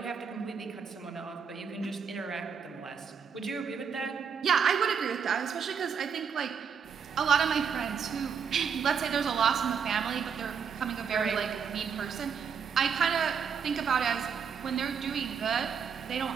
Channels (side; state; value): left; quieter; 6.7 dB